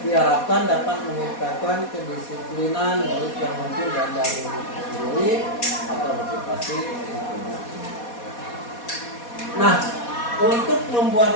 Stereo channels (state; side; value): late; right; 4.2 ms